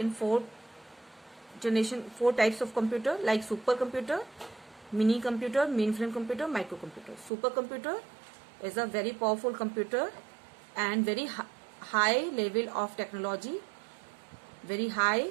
four types of computer like supercomputer, mini computer, mainframe computer, microcomputer. Supercomputer is a very powerful computer and very high level of technology, very high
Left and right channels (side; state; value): left; drops out; at 7.3 s